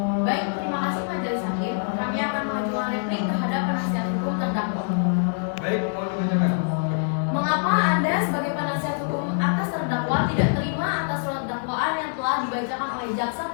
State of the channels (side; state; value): right; silent; 62 dB below the other